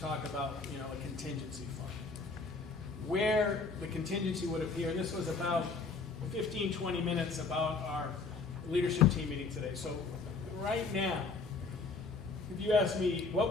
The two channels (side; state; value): right; quieter; 4.3 dB